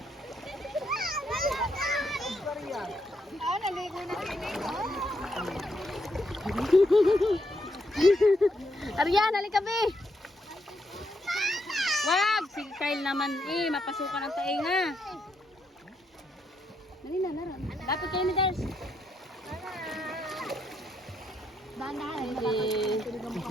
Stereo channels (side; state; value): both; normal; correlation 0.78